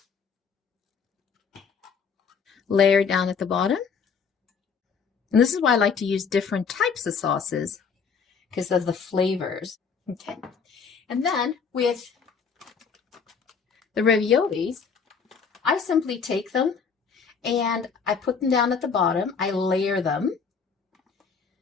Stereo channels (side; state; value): right; quieter; 5.9 dB